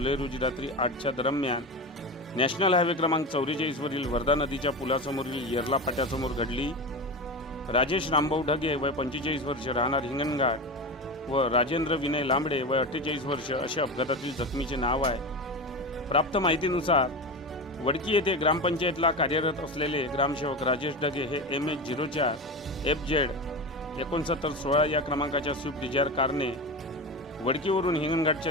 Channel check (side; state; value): both; normal; correlation 0.24